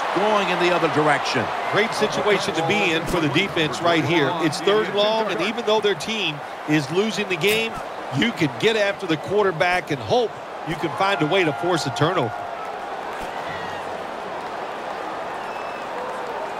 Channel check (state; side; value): identical; both; correlation 1.00